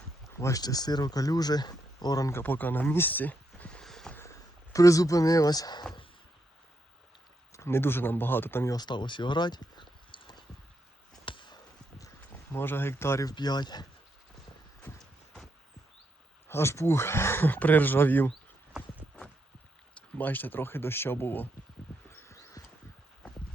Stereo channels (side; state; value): both; normal; correlation 0.80